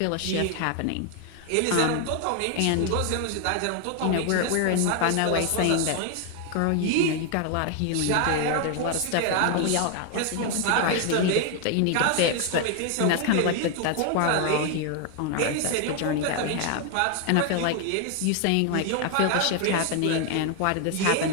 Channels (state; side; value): different; both; correlation 0.01